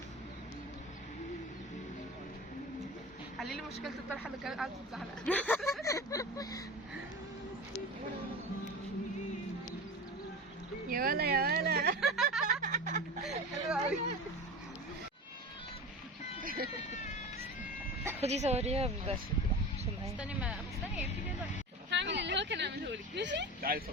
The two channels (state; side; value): normal; both; correlation 0.31